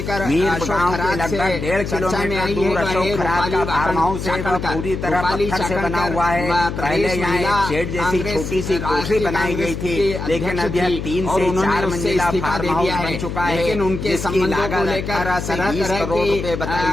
अशोक खैरात लगभग 1.5 किलोमीटर दूर अशोक खैरात का फार्म हाउस है, पूरी तरह पत्थर से बना हुआ है। पहले यहाँ शेड जैसी छोटी सी कोठरी बनाई गई थी, लेकिन अब यह 3 से 4 मंजिला फार्म हाउस बन चुका है। लेकिन उनके संबंधों को लेकर तरह करोड़ रुपए बताई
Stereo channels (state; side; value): noise; left; hum, 5 dB below the sound